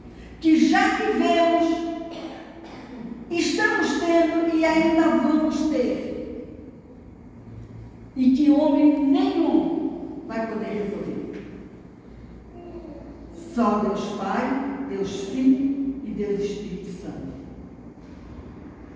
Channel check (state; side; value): identical; both; correlation 1.00